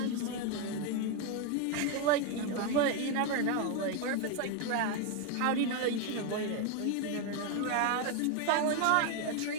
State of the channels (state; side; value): different; both; correlation 0.01